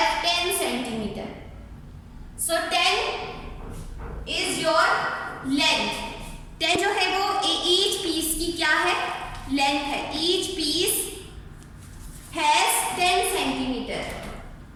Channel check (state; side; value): identical; both; correlation 1.00